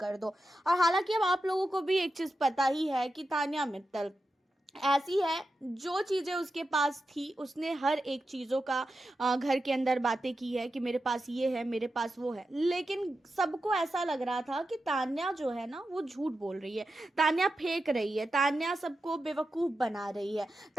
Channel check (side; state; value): both; normal; correlation 0.90